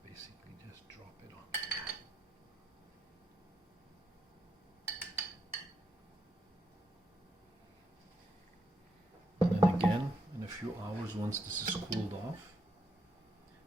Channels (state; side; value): normal; both; correlation 0.77